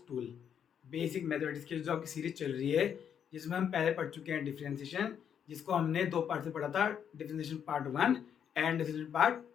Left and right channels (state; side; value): quieter; right; 8.3 dB